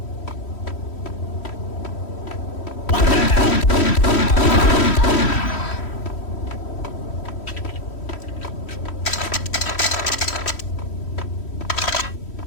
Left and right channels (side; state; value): right; late; 3.1 ms